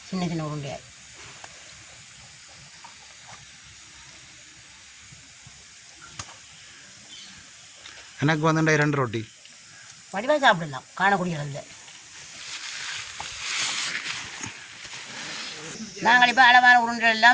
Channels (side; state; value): both; identical; correlation 1.00